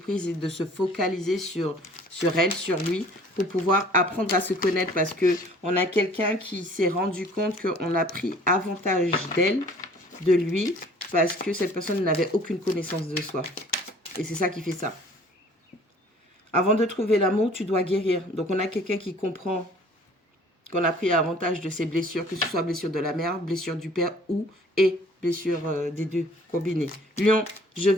et de se focaliser sur elle, sur lui, pour pouvoir apprendre à se connaître. Parce qu'on a quelqu'un qui s'est rendu compte qu'on a pris avantage d'elle, de lui, parce que cette personne n'avait aucune connaissance de soi. Et c'est ça qui fait ça. Avant de trouver l'amour, tu dois guérir. Donc on a quelqu'un qui comprend qu'on a pris avantage de ses blessures, que ce soit blessure de la mère, blessure du père ou et blessure des deux combinées. Lion, je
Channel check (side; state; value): both; normal; correlation 0.52